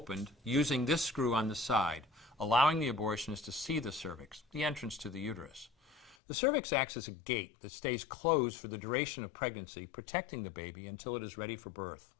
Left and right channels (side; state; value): right; drops out; at 6.2 s